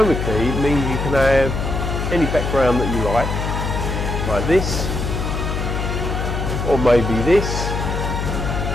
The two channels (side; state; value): left; noise; hum, 2 dB below the sound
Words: it means you can have any background that you like this, or maybe this,